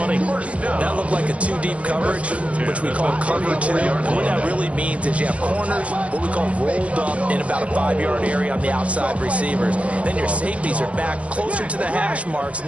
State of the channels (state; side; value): late; left; 0.063 ms